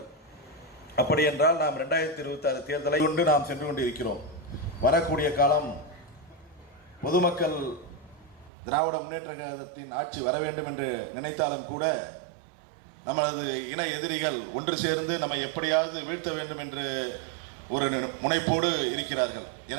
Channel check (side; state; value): left; drops out; at 8.5 s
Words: அப்படி என்றால் நாம் 2026 தேர்தலை கொண்டு நாம் சென்று கொண்டிருக்கிறோம். வரக்கூடிய காலம் பொதுமக்கள் திராவிட முன்னேற்ற கழகத்தின் ஆட்சி வர வேண்டும் என்று நினைத்தாலும் கூட நமது இன எதிரிகள் ஒன்று சேர்ந்து நம்மை எப்படியாவது வீழ்த்த வேண்டும் என்று ஒரு முனைப்போடு இருக்கிறார்கள்.